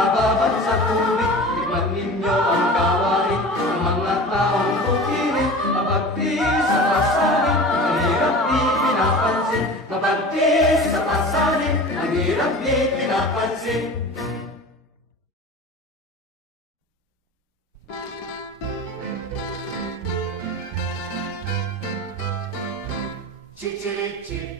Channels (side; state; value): both; normal; correlation 0.35